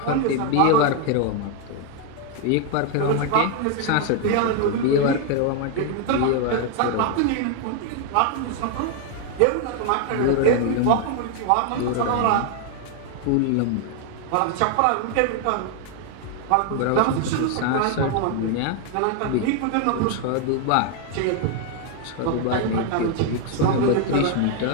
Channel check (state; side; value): different; both; correlation 0.00